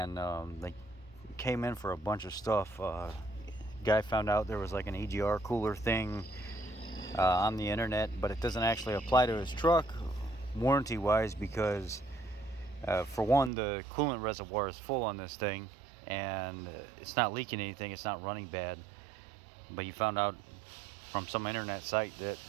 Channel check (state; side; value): drops out; left; at 13.5 s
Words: they came in for a bunch of stuff. Guy found out there was like an EGR cooler thing on the internet, but it doesn't actually apply to his truck warranty wise because for one, the coolant reservoir is full on this thing, and it's not leaking anything, it's not running bad. But he found out from some internet site that